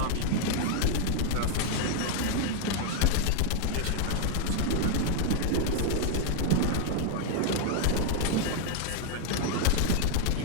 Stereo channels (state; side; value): different; both; correlation 0.00